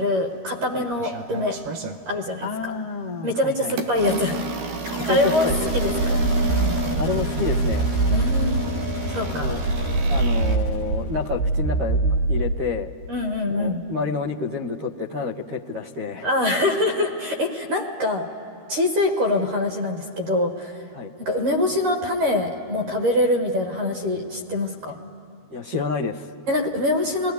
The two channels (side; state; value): left; late; 13 ms